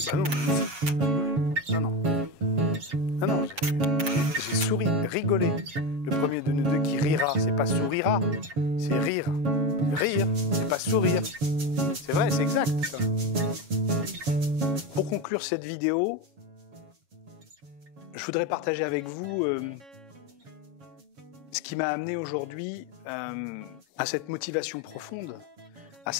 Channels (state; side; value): late; left; 7.2 ms